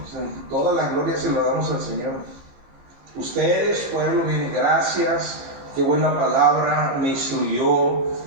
toda la gloria se la damos al Señor. Ustedes, pueblo, bien, gracias, qué buena palabra, me instruyó,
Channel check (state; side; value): late; left; 15 ms